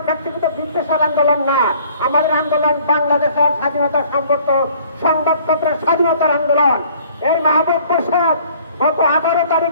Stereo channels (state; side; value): inverted; both; correlation -0.56